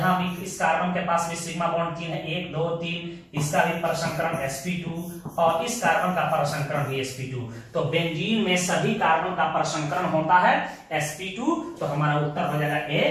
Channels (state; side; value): identical; both; correlation 1.00